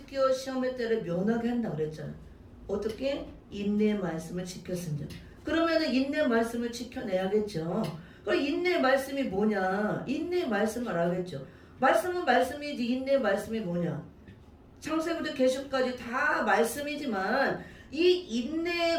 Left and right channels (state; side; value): identical; both; correlation 1.00